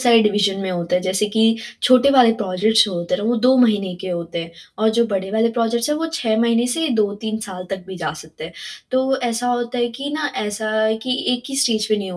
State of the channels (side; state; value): both; identical; correlation 1.00